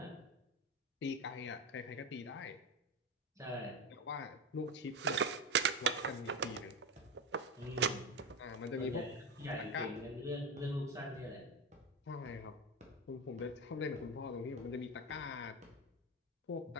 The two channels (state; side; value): normal; both; correlation 0.18